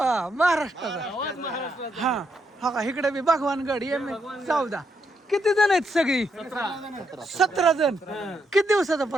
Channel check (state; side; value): normal; both; correlation 0.79